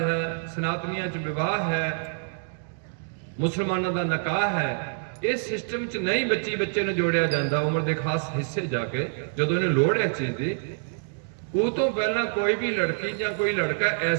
ਹੈ, ਸਨਾਤਨੀਆਂ 'ਚ ਵਿਵਾਹ ਹੈ, ਮੁਸਲਮਾਨਾਂ ਦਾ ਨਿਕਾਹ ਹੈ, ਇਸ ਸਿਸਟਮ 'ਚ ਨਹੀਂ ਬੱਚੇ ਨੂੰ ਜੋੜਿਆ ਜਾਂਦਾ ਉਮਰ ਦੇ ਖਾਸ ਹਿੱਸੇ ਜਾ ਕੇ, ਜਦੋਂ ਇਹਨੂੰ ਲੋੜ ਹੈ ਚੀਜ਼ ਦੀ। ਉਹ ਤੋਂ ਪਹਿਲਾਂ ਕੋਈ ਵੀ ਲੜਕੀ ਜਾਂ ਕੋਈ ਲੜਕਾ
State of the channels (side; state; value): left; silent; digital silence